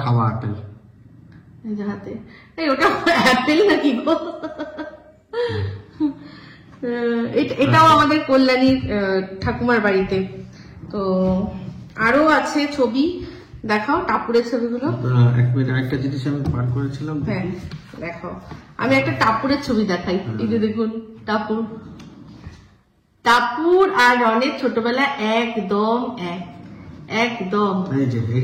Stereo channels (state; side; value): identical; both; correlation 1.00